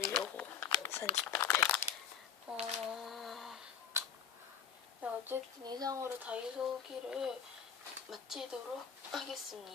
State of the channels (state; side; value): quieter; right; 7.8 dB